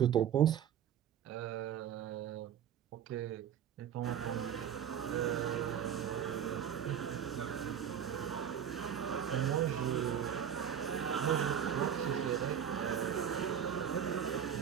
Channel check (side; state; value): left; quieter; 8.9 dB